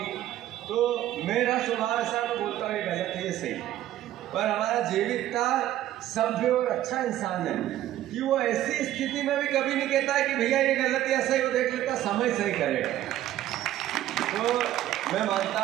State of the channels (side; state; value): left; quieter; 13.3 dB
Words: तो मेरा स्वभाव ऐसा मैं बोलता हूँ ये गलत है, ये सही है। पर हमारा जेबी इतना सभ्य और अच्छा इंसान है कि वो ऐसी स्थिति में भी कभी नहीं कहता है कि भैया ये गलत है, सही, वो देख लेता, समय सही करेगा। तो मैं मानता